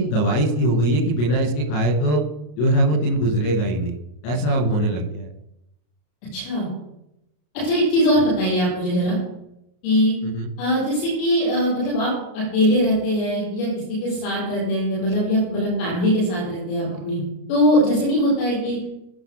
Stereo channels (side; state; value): right; late; 33 ms